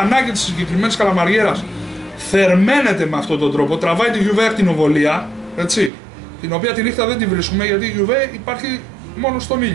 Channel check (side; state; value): left; drops out; at 5.9 s